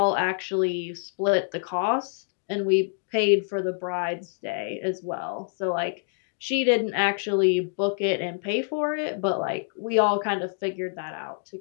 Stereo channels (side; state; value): right; silent; digital silence